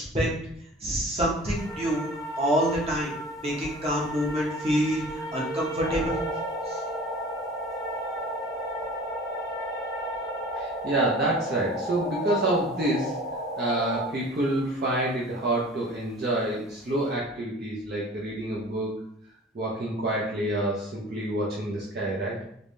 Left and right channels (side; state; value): both; normal; correlation 0.42